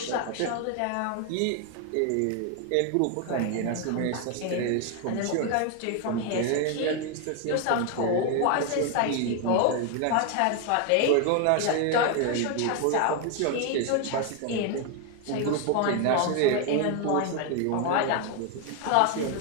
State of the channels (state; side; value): different; both; correlation 0.01